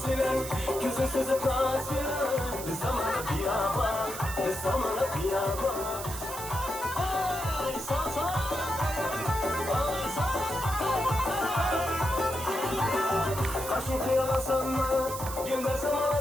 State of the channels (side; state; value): right; noise; hiss, 9 dB below the sound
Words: bilen, gözün sızıtmaz bilen. Bir zamana kıyama, bir zamana kıyama. Ay sağ sağ, ay sağ. Kaşın kıyalasan mı, göndersem